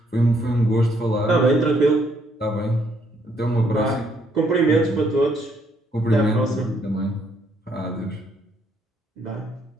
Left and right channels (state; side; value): normal; both; correlation 0.70